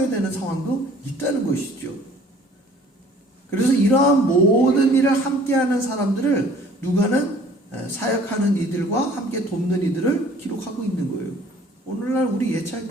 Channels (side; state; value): both; normal; correlation 0.53